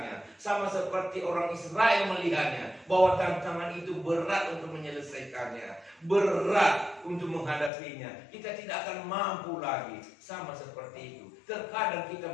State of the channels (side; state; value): right; drops out; at 7.7 s